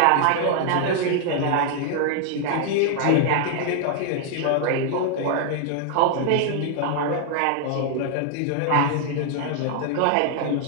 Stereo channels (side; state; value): both; different; correlation 0.00